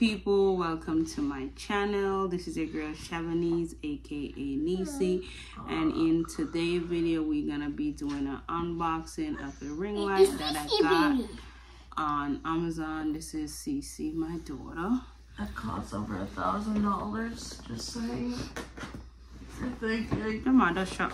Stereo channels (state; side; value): identical; both; correlation 1.00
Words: people, welcome to my channel. This is your girl Chavanese, aka Niecey, and in today's video we're gonna be doing an unboxing of a ring light that I got on Amazon. This is Cece, my daughter. That costs over $1,000, just saying. Come on, just shut